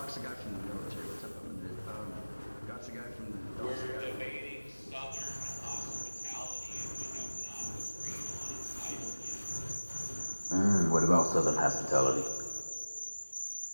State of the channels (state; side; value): inverted; both; correlation -1.00